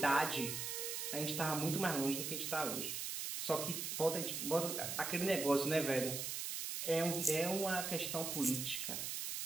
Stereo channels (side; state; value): right; noise; hiss, 3 dB below the sound